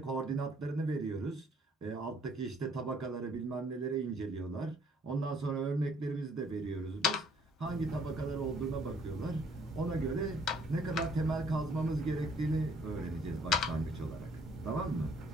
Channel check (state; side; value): normal; both; correlation 0.62